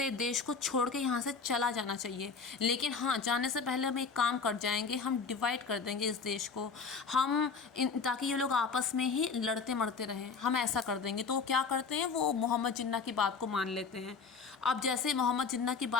देश को छोड़ के यहाँ से चला जाना चाहिए। लेकिन हाँ, जाने से पहले हम एक काम कर जाएंगे, हम डिवाइड कर देंगे इस देश को, ताकि ये लोग आपस में ही लड़ते मरते रहें, हम ऐसा कर देंगे। तो वो क्या करते हैं, वो मोहम्मद जिन्ना की बात को मान लेते हैं। अब जैसे मोहम्मद जिन्ना की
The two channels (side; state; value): right; quieter; 5.2 dB